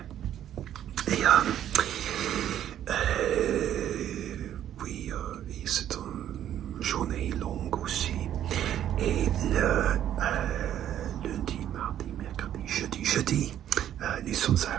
Et oui, et c'est une journée longue aussi. Et le lundi, mardi, mercredi, jeudi, nous sommes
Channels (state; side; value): quieter; left; 11.0 dB